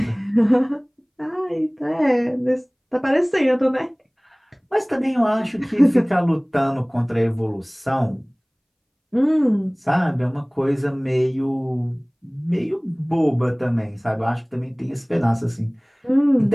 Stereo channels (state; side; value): identical; both; correlation 1.00